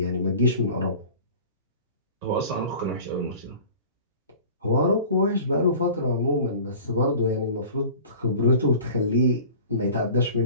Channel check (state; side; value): inverted; both; correlation -0.42